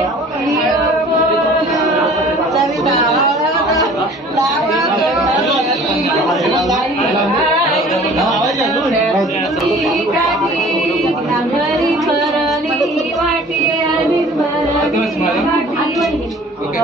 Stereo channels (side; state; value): both; normal; correlation 0.48